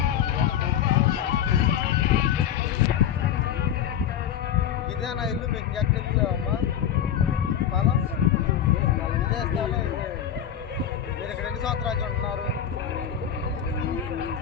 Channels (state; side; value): quieter; right; 9.4 dB